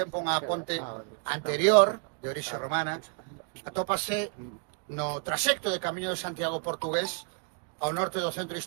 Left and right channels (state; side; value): quieter; left; 38.3 dB